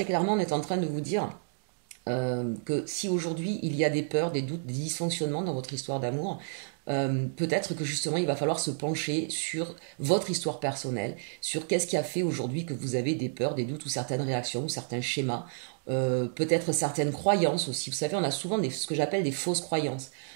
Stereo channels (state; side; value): silent; left; digital silence